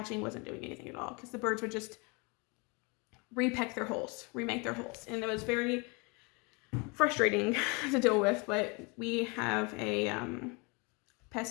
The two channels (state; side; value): quieter; right; 29.7 dB